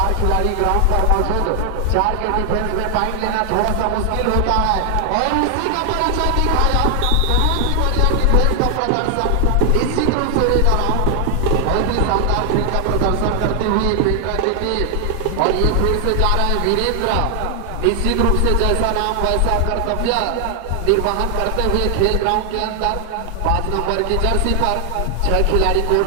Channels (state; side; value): different; both; correlation 0.00